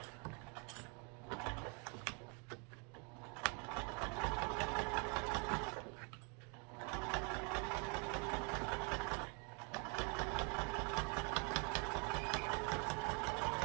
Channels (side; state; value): left; quieter; 35.6 dB